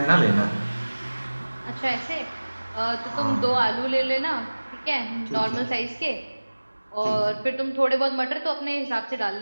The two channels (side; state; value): both; inverted; correlation -1.00